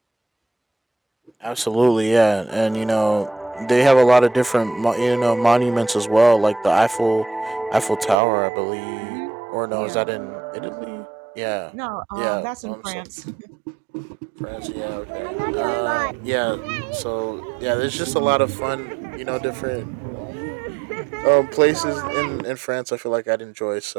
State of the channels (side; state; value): left; drops out; at 8.2 s